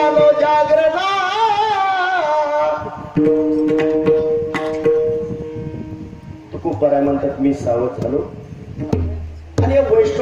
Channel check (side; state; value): both; identical; correlation 1.00